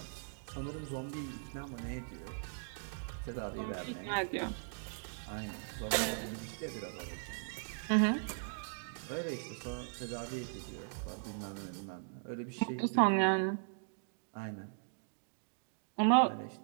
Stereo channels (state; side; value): silent; left; digital silence